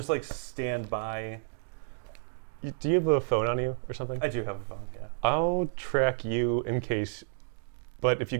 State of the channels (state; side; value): silent; left; digital silence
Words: like, stand by. Do you have a phone on you or something? I do have a phone, yeah. I'll track you in case. But if you